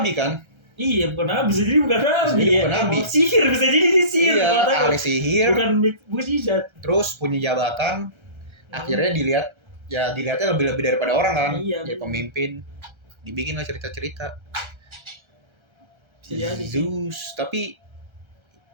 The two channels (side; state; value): left; late; 1.3 ms